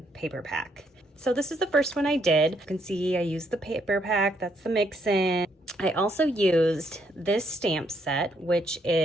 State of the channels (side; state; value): both; normal; correlation 0.72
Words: paper pack. So this is the first one I did. You can see I used the paper pack, that's the mix-in. I also used this stamp set, which